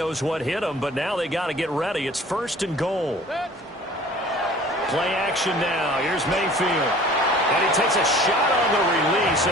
what hit him, but now they got to get ready. It's 1st and goal. Play action now. Here's Mayfield. And he takes a shot on the release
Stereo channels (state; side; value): normal; both; correlation 0.48